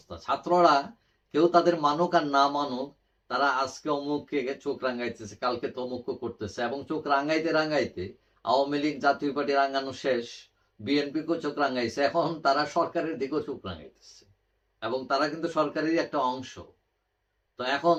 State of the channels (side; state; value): both; identical; correlation 1.00